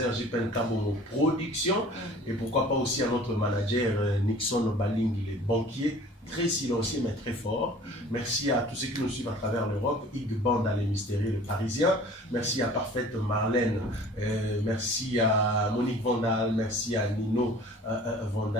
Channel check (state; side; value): normal; both; correlation 0.47